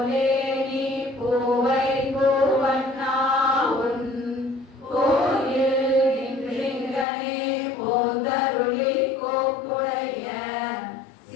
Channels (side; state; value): right; drops out; at 7.1 s